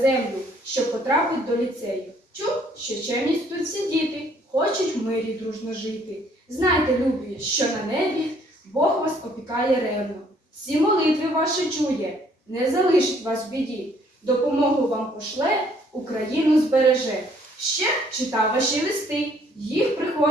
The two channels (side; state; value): both; normal; correlation 0.63